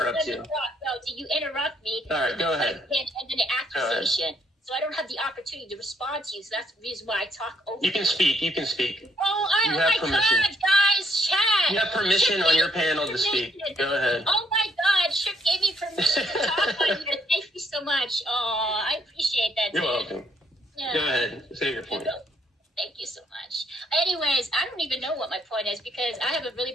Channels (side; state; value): both; normal; correlation 0.70